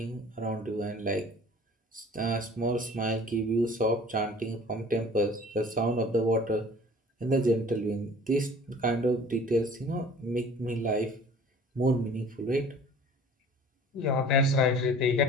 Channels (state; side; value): normal; both; correlation 0.48